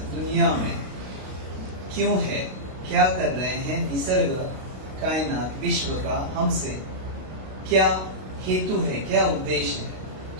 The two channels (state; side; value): late; left; 32 ms